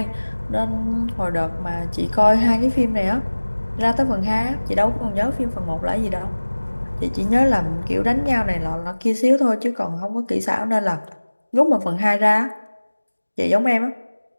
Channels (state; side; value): inverted; both; correlation -1.00